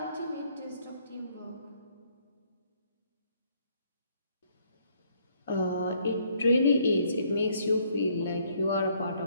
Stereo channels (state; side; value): inverted; both; correlation -0.67